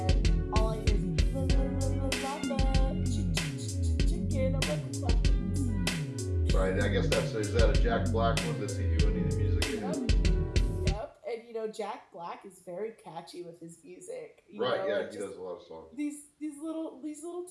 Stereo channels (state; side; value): identical; both; correlation 1.00